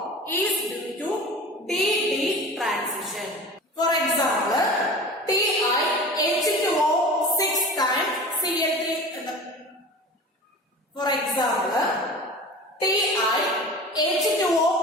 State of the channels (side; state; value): both; normal; correlation 0.37